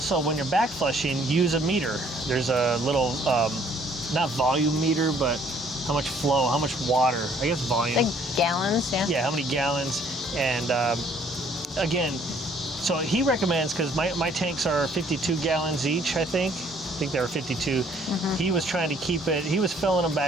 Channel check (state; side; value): normal; both; correlation 0.61